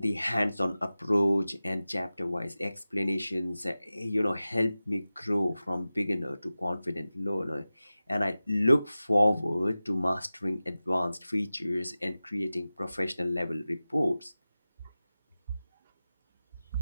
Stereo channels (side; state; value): both; inverted; correlation -0.96